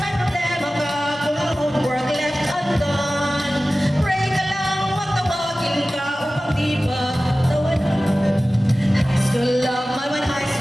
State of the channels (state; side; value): normal; both; correlation 0.96